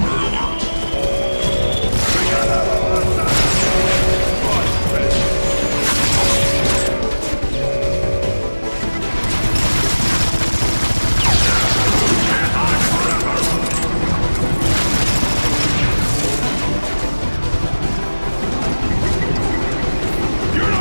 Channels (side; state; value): both; inverted; correlation -1.00